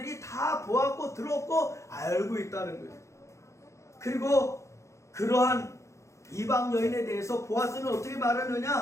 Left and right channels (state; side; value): late; right; 0.14 ms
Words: 다 보았고 들었고 알고 있다는 거예요. 그리고 그러한 이방 여인에 대해서 보아스는 어떻게